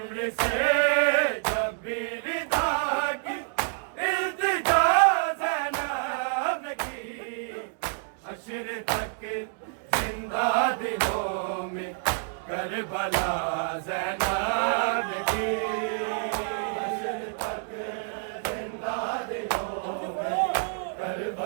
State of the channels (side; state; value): left; silent; digital silence